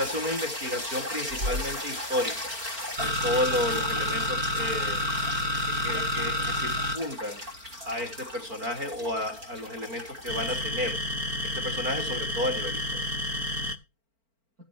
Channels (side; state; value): left; late; 4.4 ms